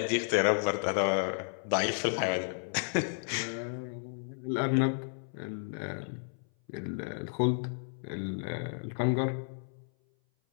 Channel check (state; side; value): silent; right; 56 dB below the other